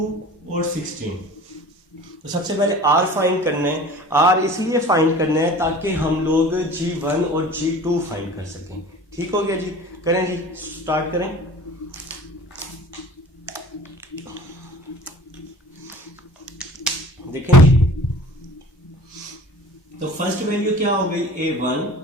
और 16। तो सबसे पहले R फाइंड करना है। R इसलिए फाइंड करना है ताकि हम लोग G1 और G2 फाइंड कर सकें। ठीक हो गया जी, करें जी, स्टार्ट करें। देखें जी, तो फर्स्ट वैल्यू क्या हो गई A1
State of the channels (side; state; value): both; normal; correlation 0.43